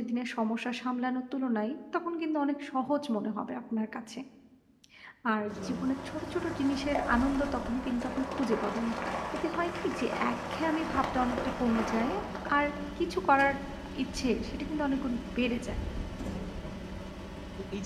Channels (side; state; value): both; identical; correlation 1.00